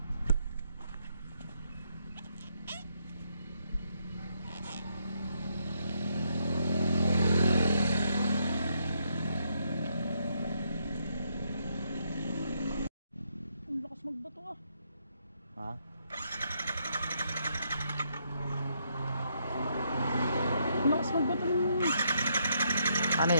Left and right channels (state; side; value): inverted; both; correlation -0.74